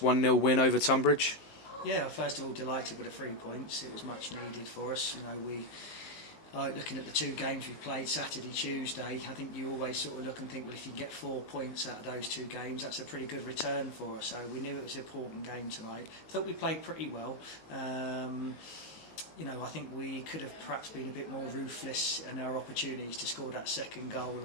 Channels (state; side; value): late; right; 19 ms